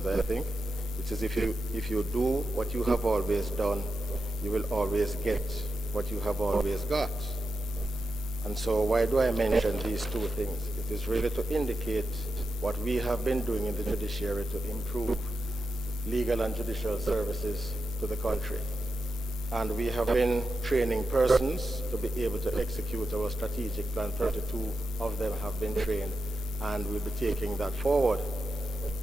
I think, which is if you do what you have always done, you will always get what you have always got. And so why do I mention these two things? It is really to indicate what we have been doing in the judiciary to improve legal and judicial services to the country. And we have been training persons to be able to execute our strategic plan. 32 of them have been trained, and we'll be taking that forward.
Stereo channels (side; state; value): both; normal; correlation 0.88